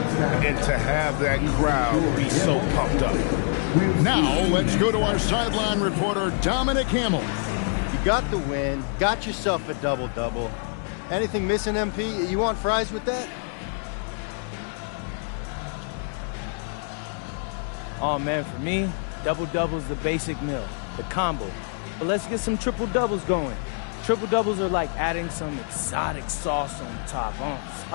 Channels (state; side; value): silent; right; 56 dB below the other